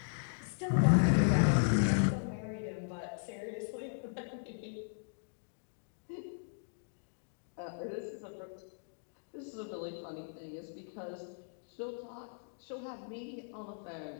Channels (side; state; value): right; silent; digital silence